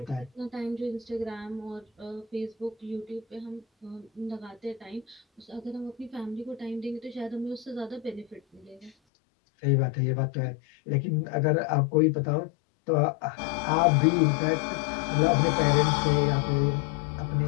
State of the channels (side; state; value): right; drops out; at 8.9 s